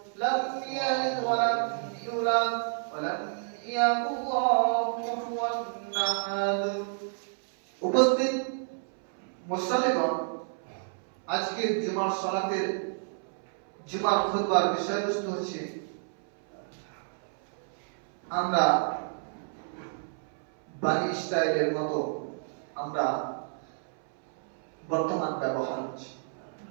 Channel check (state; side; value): silent; left; 58 dB below the other